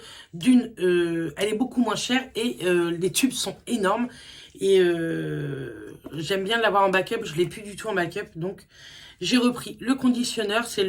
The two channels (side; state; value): both; identical; correlation 1.00